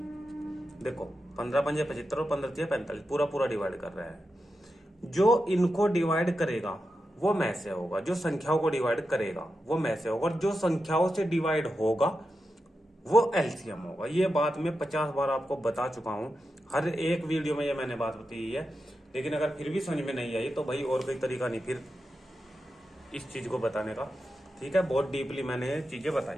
देखो 15 पंजे 75 और 15 से 45 पूरा पूरा डिवाइड कर रहा है। जो इनको डिवाइड करेगा वो में से होगा, जो संख्याओं को डिवाइड करेगा वो में से होगा, और जो संख्याओं से डिवाइड होगा वो एलसीएम होगा। ये बात मैं 50 बार आपको बता चुका हूं, हर एक वीडियो में ये मैंने बात बताई है। लेकिन अगर फिर भी समझ में नहीं आई तो भाई और कोई तरीका नहीं फिर इस चीज को बताने का। ठीक है, बहुत डीपली मैंने चीजें बताई।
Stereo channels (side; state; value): both; normal; correlation 0.89